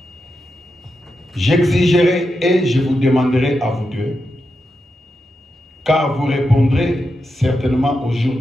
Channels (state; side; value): normal; both; correlation 0.87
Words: J'exigerai et je vous demanderai à vous deux, car vous répondrez certainement au jour